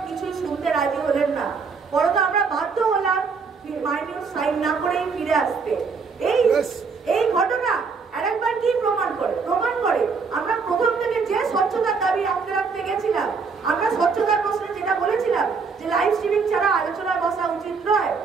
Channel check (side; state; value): left; quieter; 5.1 dB